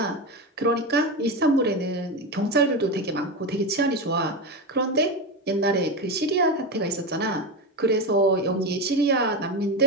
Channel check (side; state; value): both; normal; correlation 0.17